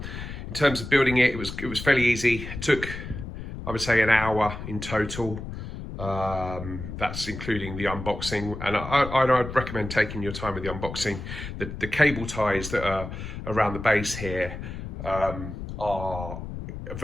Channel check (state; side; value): noise; left; rumble, 8 dB below the sound